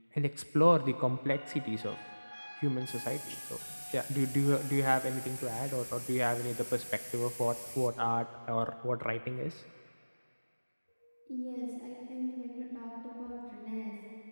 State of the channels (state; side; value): inverted; both; correlation -1.00